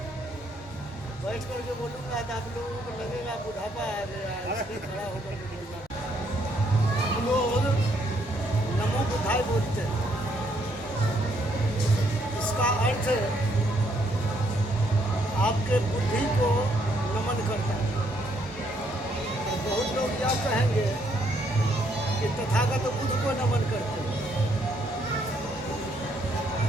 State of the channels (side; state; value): both; normal; correlation 0.71